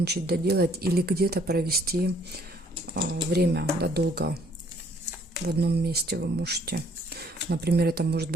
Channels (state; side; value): normal; both; correlation 0.62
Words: доделать или где-то провести время, да, долго в одном месте вы можете. Например, это может